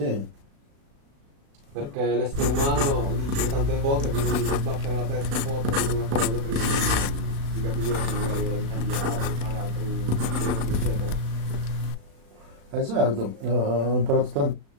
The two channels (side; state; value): left; late; 36 ms